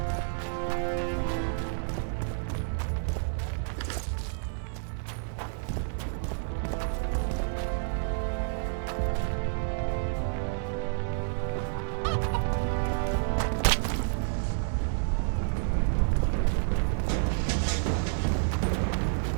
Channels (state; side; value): silent; left; 58 dB below the other